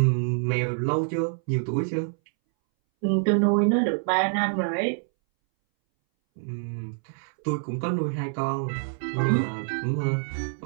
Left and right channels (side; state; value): left; silent; 61 dB below the other